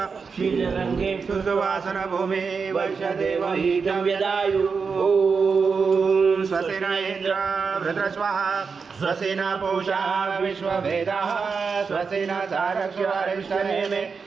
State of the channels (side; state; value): left; quieter; 5.3 dB